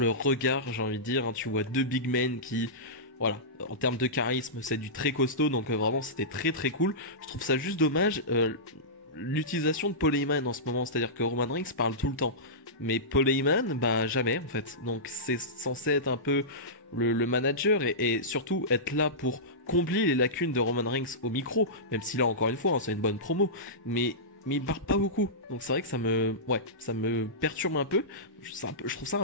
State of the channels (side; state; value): both; normal; correlation -0.16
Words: regard, j'ai envie de dire. Tu vois deux big men qui, voilà, en termes de charisme, c'est du très costaud. Donc vraiment, c'était très très cool. Je trouve ça juste dommage. L'utilisation de Paul Heyman en ce moment, c'est-à-dire que Roman Reigns parle tout le temps, mais Paul Heyman, jamais en fait. Donc c'est censé être un peu le manager et surtout être là pour combler les lacunes de Roman Reigns au micro, même si là encore une fois, c'est une bonne promo, mais il parle pas beaucoup. Donc c'est vrai que ça me perturbe un peu. Je trouve ça